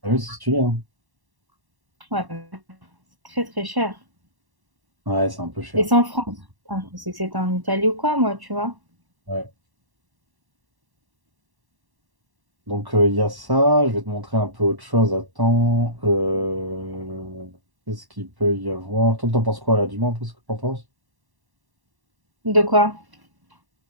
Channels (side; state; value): left; late; 1.1 ms